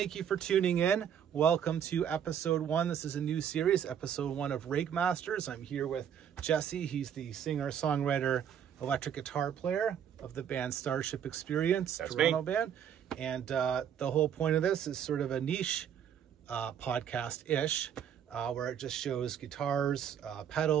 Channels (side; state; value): left; quieter; 8.8 dB